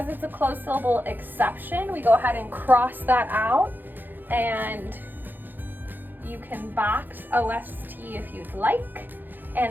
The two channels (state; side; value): late; left; 0.089 ms